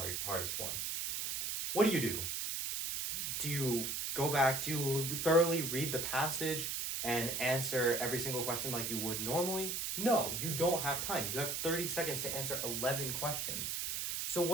one. What do? Do you go back, do you thoroughly read the passage and answer every single question like you would normally? No, you don't have time. You have 30 seconds to answer 11 questions. So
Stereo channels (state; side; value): noise; right; hiss, 2 dB below the sound